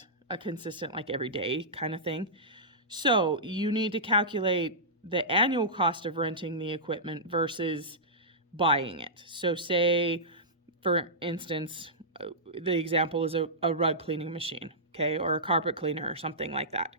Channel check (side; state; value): both; normal; correlation -0.16